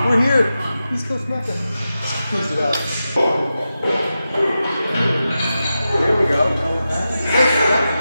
we're here. East Coast Mecca. Close it out. There we go.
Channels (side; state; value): both; inverted; correlation -0.91